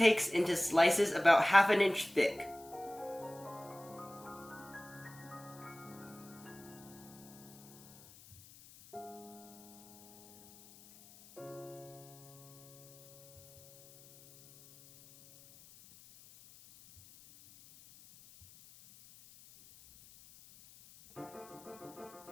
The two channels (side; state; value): left; noise; hiss, 22 dB below the sound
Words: into slices about 1/2 inch thick.